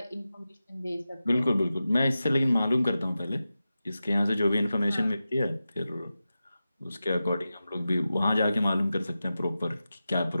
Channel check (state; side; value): inverted; both; correlation -0.93